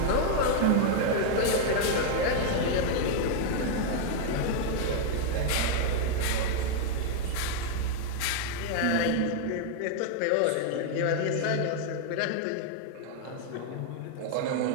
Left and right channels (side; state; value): both; different; correlation 0.00